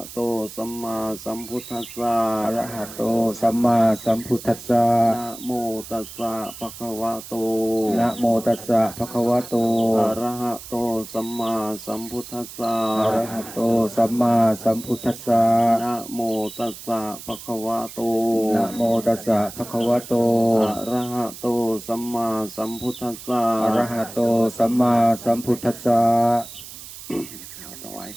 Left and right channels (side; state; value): right; noise; hiss, 14 dB below the sound